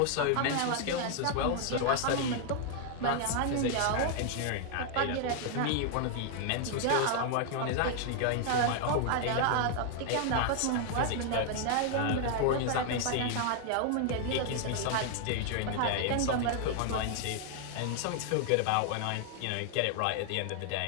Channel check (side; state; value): both; different; correlation 0.00